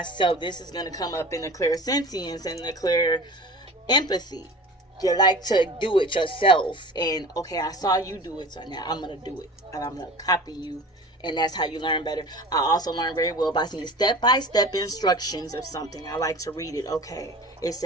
This is going to come up in the clairsensience and the clear empathy. You like to do it yourself, and okay, I saw you do it, so now I'm going to do it, and I'm going to copy you. And that's how you learn better. I also learn very well by seeing step-by-step instructions of something. I like to read it. Okay, it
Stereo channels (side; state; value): both; normal; correlation 0.38